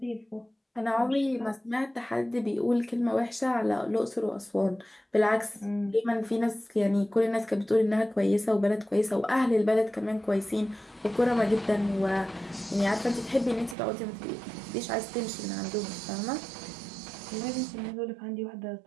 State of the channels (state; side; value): drops out; left; at 13.8 s